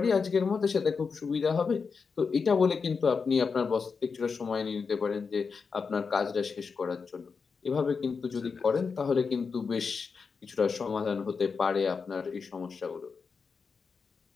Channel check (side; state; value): right; quieter; 5.3 dB